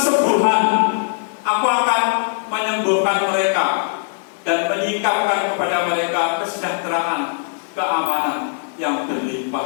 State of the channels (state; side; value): silent; right; digital silence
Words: Aku akan menyembuhkan mereka dan menyingkapkan kepada mereka kesejahteraan, keamanan yang